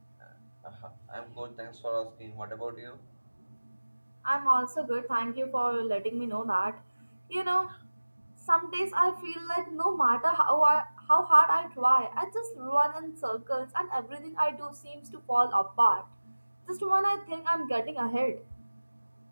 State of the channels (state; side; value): inverted; both; correlation -1.00